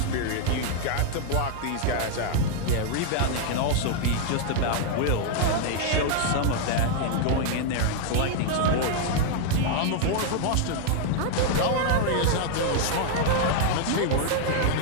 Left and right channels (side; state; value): both; different; correlation 0.00